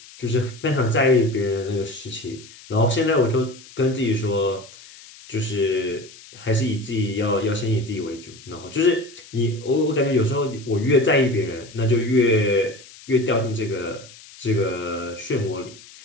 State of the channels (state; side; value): noise; left; hiss, 20 dB below the sound